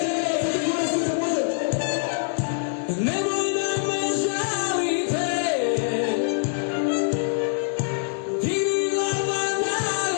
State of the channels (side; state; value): right; silent; digital silence